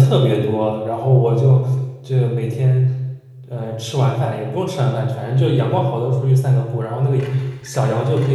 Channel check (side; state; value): both; identical; correlation 1.00